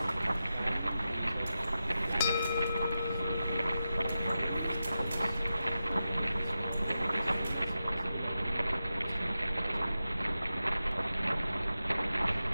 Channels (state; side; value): inverted; both; correlation -0.91